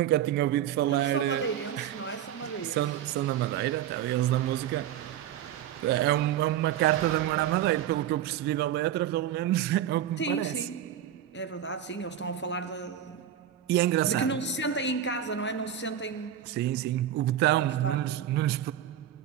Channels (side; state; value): left; quieter; 10.6 dB